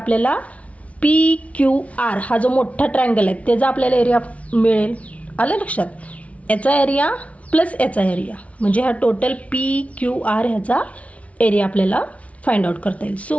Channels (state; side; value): late; right; 0.065 ms